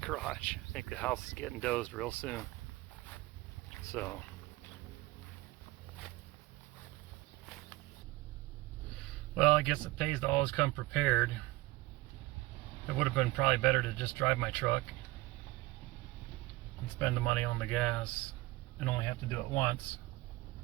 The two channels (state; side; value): quieter; left; 19.4 dB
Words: garage. I think the house is getting dozed real soon. So. Well, I guess it pays to always come prepared. It would have been probably better to just drive my truck and spend the money on the gas and only have to do it once